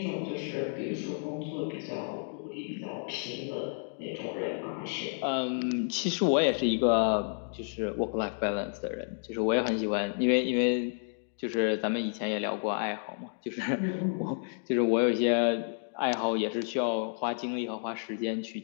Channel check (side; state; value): right; silent; digital silence